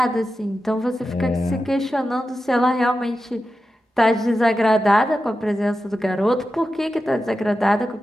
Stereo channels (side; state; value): both; normal; correlation 0.91